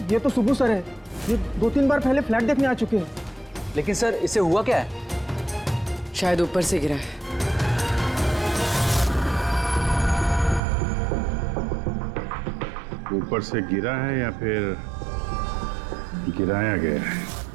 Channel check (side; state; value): left; drops out; at 10.6 s